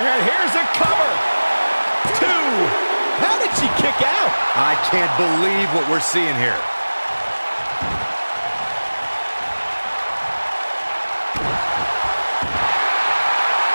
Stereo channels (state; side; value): inverted; both; correlation -1.00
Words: And here's a cover. 2. How did she kick out? I can't believe what we're seeing here.